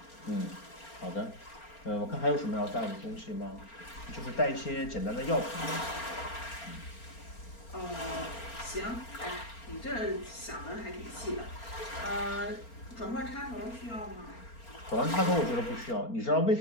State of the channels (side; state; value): right; late; 4.4 ms